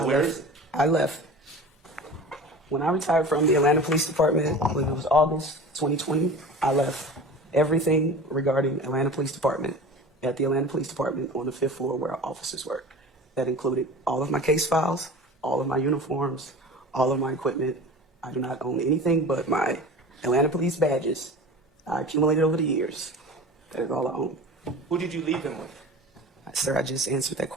where is it? I left. When I retired from the Atlanta Police Department, I believe it was August 2020, I left everything regarding Atlanta Police Department at the Atlanta Police Department on the 5th floor where our officers work. That included all of my case files, all of my uniforms, all of my equipment. I do not own anything but my Atlanta Police badges I accumulated over the years. That is all I own. Who did you leave them with? Sir, I just answered that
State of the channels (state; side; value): normal; both; correlation 0.37